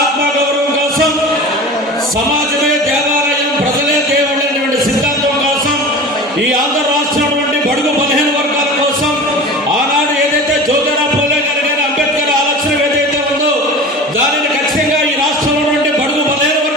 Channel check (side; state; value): both; normal; correlation 0.35